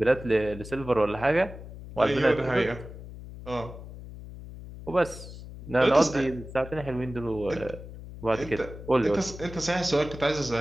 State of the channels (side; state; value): left; noise; hum, 13 dB below the sound